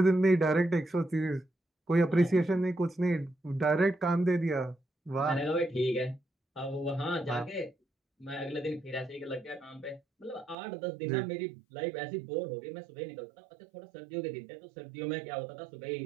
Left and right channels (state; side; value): drops out; left; at 10.6 s